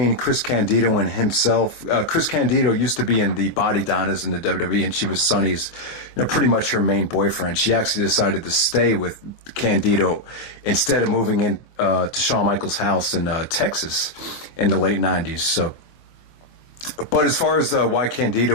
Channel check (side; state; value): right; late; 24 ms